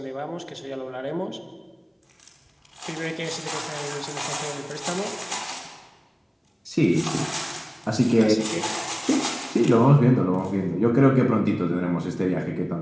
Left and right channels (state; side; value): identical; both; correlation 1.00